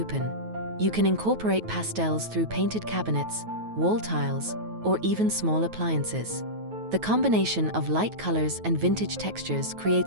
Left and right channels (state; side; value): late; left; 9.3 ms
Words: You can incorporate pastels through painted cabinets, wall tiles, or even small appliances. The combination of light colors and vintage textures